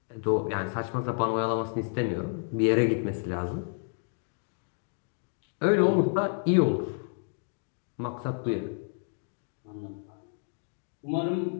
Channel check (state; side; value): silent; right; 58 dB below the other